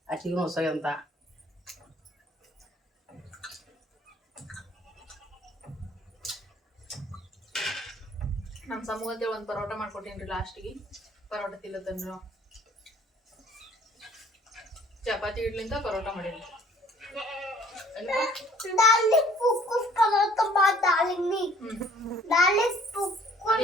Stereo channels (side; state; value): both; normal; correlation 0.56